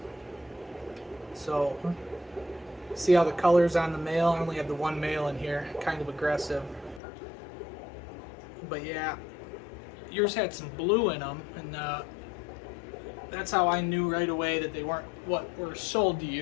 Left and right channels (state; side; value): drops out; right; at 7.0 s